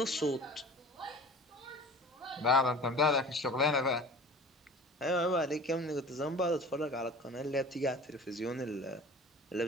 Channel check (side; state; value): both; normal; correlation 0.41